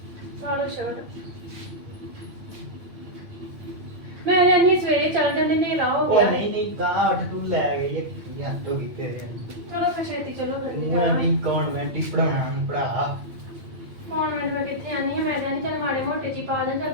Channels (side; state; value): left; late; 8.9 ms